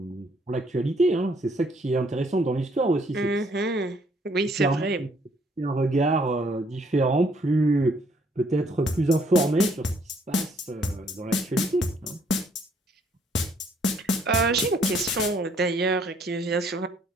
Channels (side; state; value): both; normal; correlation 0.66